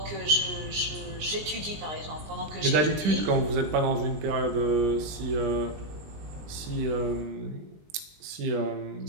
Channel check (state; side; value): late; left; 20 ms